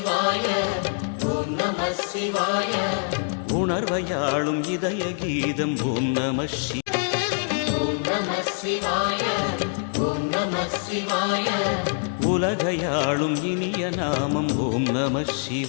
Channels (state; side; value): silent; right; 62 dB below the other